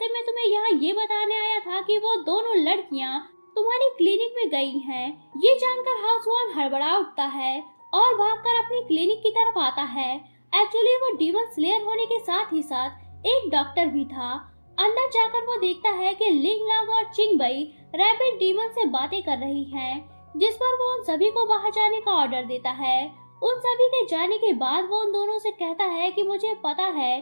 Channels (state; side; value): inverted; both; correlation -1.00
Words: मैं तुम्हें यहाँ ये बताने आया था कि वो दोनों लड़कियाँ तुम्हारी क्लिनिक में गई हैं। ये जानकर हाउस वान हड़बड़ा उठता है और भागकर अपनी क्लिनिक की तरफ आता है। एक्चुअली वो डीमन स्लेयर होने के साथ ही साथ एक डॉक्टर भी था। अंदर जाकर वो देखता है कि लिंग लांग और चिंग बई रैबिट डीमन से बातें कर रही हैं, जिस पर वो उन सभी को बाहर जाने का ऑर्डर देता है। उन सभी के जाने के बाद वो उन दोनों से कहता है कि मुझे पता है